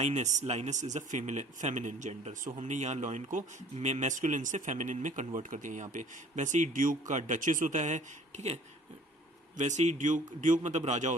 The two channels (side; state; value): both; normal; correlation 0.51